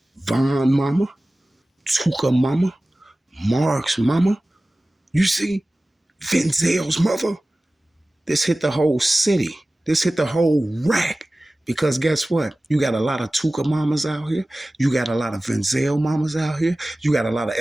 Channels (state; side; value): normal; both; correlation 0.97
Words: Von mama, Tuka mama, Mark's mama. You see, Venzel's mother. This hit the whole city. This hit the whole rack. Because guess what? You got a lot of Tuka mamas out here. You got a lot of Venzel mamas out here. You got a lot of